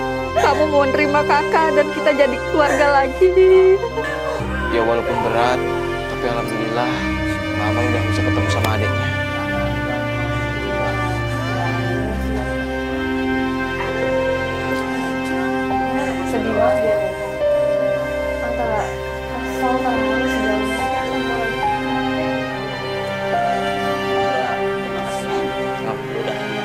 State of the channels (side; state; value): left; noise; hum, 28 dB below the sound